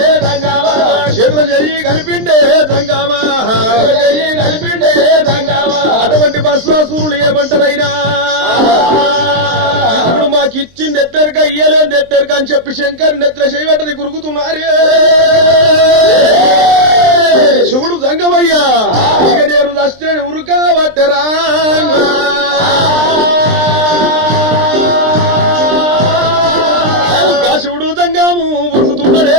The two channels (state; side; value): late; left; 23 ms